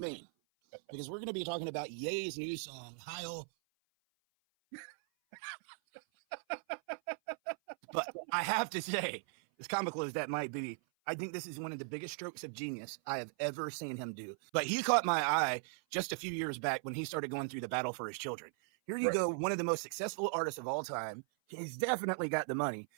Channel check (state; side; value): silent; left; 52 dB below the other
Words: because we're going to be talking about Ye's new song, Heil. But I have to say, as comical as that might be, I think this is one of the biggest strokes of genius I have ever seen him do. But he caught my eye just a few years back when he started going through the battle for his children. Here you go, one of the most successful artists of all time. He's definitely got the money,